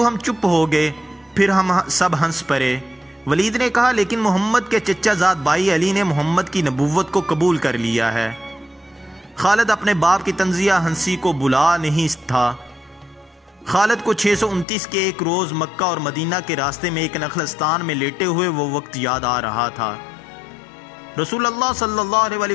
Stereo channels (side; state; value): right; drops out; at 14.7 s